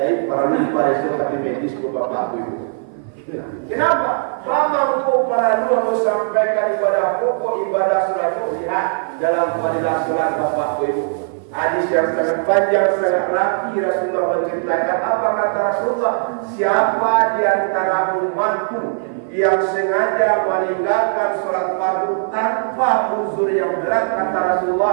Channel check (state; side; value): silent; left; 55 dB below the other